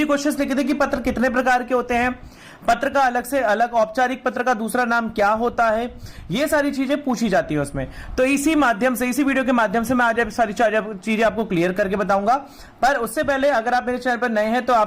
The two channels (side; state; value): both; identical; correlation 1.00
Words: क्वेश्चंस लिखे थे कि पत्र कितने प्रकार के होते हैं, पत्र का अलग से अलग, औपचारिक पत्र का दूसरा नाम क्या होता है, ये सारी चीजें पूछी जाती है उसमें। तो इसी माध्यम से, इसी वीडियो के माध्यम से मैं आज सारी चीजें आपको क्लियर करके बताऊंगा। पर उससे पहले अगर आप मेरे चैनल पर नए हैं तो